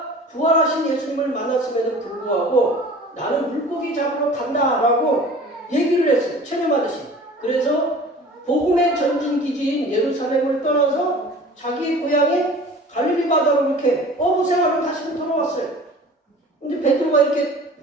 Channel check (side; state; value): both; normal; correlation 0.43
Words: 부활하신 예수님을 만났음에도 불구하고 나는 물고기 잡으러 간다라고 얘기를 했어요. 체념하듯이. 그래서 복음의 전진 기지인 예루살렘을 떠나서 자기 고향인 갈릴리 바다로 이렇게 어부 생활을 다시 돌아왔어요. 근데 베드로가 이렇게